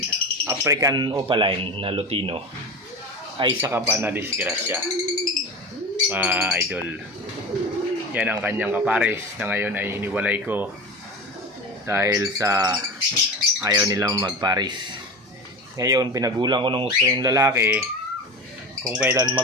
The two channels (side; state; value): both; normal; correlation 0.28